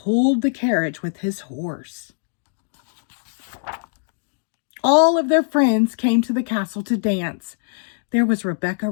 the carriage with his horse. All of their friends came to the castle to dance. There was Rebecca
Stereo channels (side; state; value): right; silent; 64 dB below the other